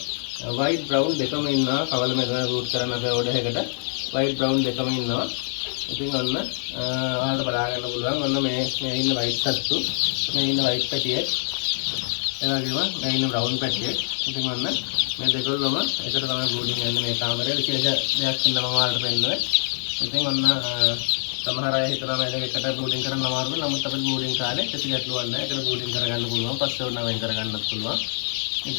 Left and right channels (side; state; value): right; silent; 62 dB below the other